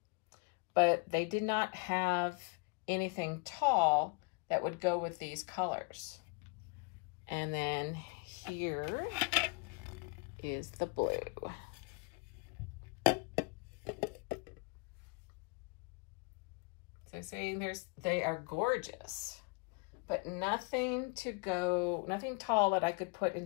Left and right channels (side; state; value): right; quieter; 30.5 dB